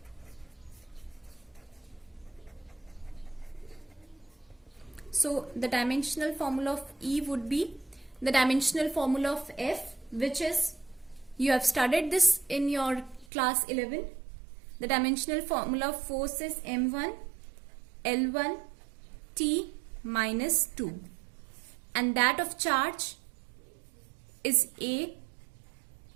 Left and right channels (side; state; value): left; drops out; at 13.2 s